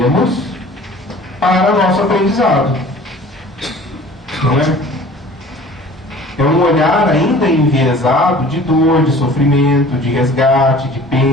para nosso aprendizado. Não é? É um olhar ainda enviesado de dor, de sofrimento, de resgate, de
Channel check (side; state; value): both; normal; correlation 0.46